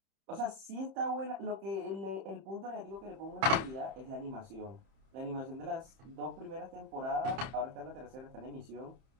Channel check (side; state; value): left; late; 30 ms